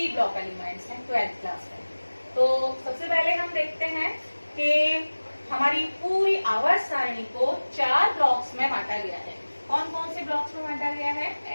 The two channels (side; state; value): both; inverted; correlation -1.00